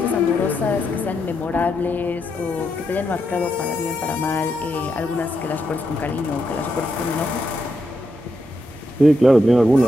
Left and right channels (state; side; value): normal; both; correlation 0.82